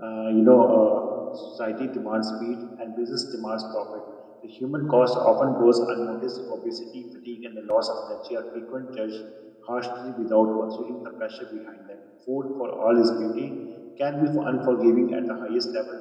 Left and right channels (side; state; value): both; identical; correlation 1.00